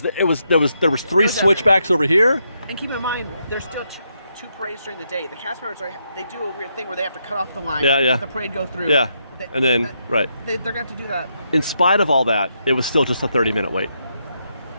3 switchbacks over here. And keep in mind, there's still two parades during the day. The cast members they do a weird thing where they have to cut off the line. Yeah. Let the parade go through. Yeah, and then they're going to have to do that. In spite of all that, it was still just a 30-minute wait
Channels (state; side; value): inverted; both; correlation -0.80